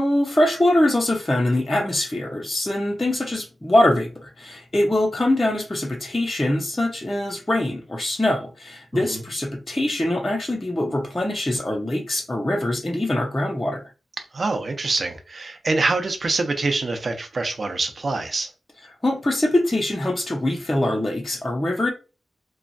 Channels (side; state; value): both; normal; correlation 0.92